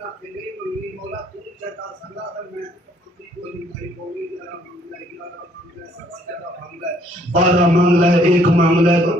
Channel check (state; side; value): normal; both; correlation 0.64